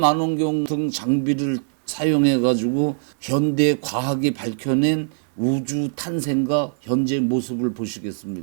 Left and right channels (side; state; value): left; silent; digital silence